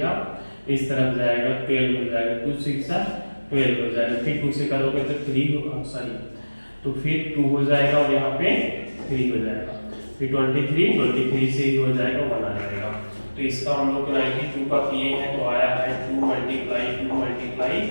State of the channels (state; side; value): inverted; both; correlation -1.00